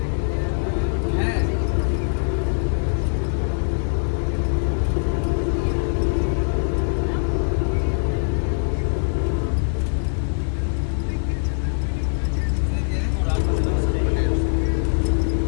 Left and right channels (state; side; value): silent; right; 64 dB below the other